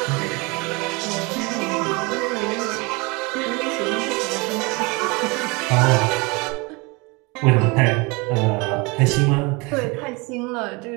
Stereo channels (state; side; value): quieter; left; 27.1 dB